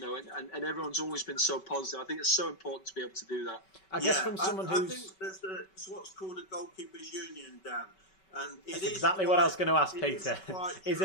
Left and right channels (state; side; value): late; right; 5.3 ms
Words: everyone's always been so positive. I think it's so important to be able to do that. I guess from someone who's... I think there's what's called a goalkeepers union, Dan. And that's exactly what I was going to ask, Peter. Is